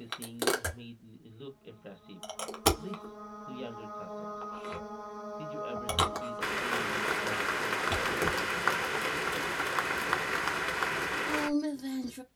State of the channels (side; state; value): both; identical; correlation 1.00